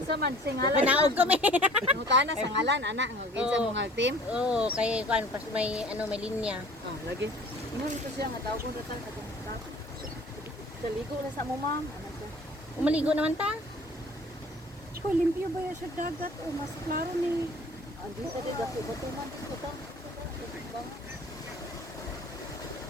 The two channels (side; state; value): both; normal; correlation 0.48